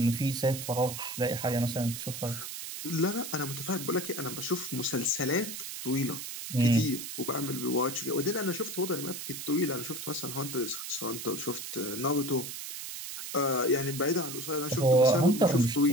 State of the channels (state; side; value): noise; right; hiss, 8 dB below the sound